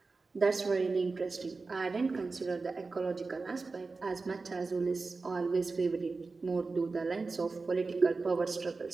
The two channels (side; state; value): left; quieter; 4.0 dB